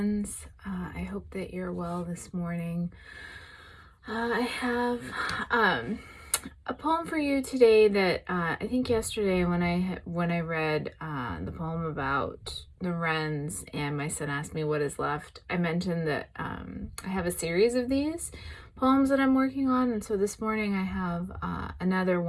I hope that you're well this morning. I have a poem for you today that I think yesterday when I read the poem about the wrens and my son asked me what is left, I mentioned that I have a series of these poems that I'm working on, and so this morning I have another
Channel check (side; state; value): both; identical; correlation 1.00